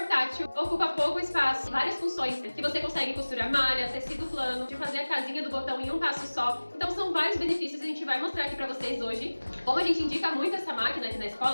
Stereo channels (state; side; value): inverted; both; correlation -1.00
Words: ocupa pouco espaço, várias funções que você consegue costurar malha, tecido plano, de fazer a casinha do botão em um passo só. Então são vários benefícios e a gente vai mostrar aqui para vocês hoje. Como a gente indica muito essa máquina aqui na